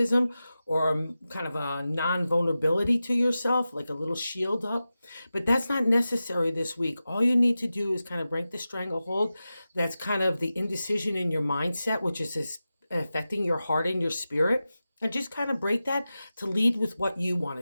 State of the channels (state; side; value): inverted; both; correlation -0.93